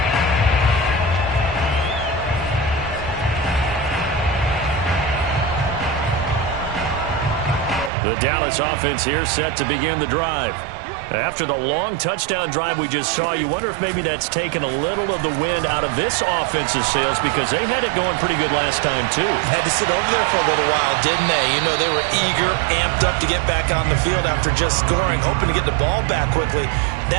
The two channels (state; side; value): drops out; left; at 7.9 s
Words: The Dallas offense here set to begin the drive. After the long touchdown drive we just saw, you wonder if maybe that's taken a little of the wind out of this offense's sails because they had it going pretty good last time, too. Had to sit over there for a little while, didn't they? You know, they were eager, amped up to get back on the field after just scoring, hoping to get the ball back quickly.